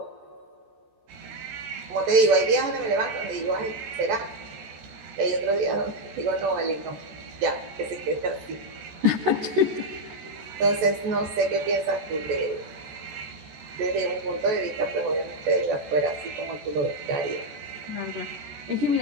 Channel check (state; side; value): late; left; 14 ms